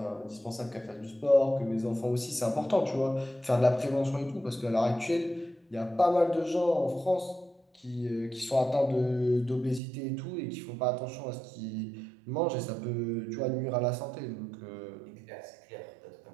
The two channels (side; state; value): left; drops out; at 9.8 s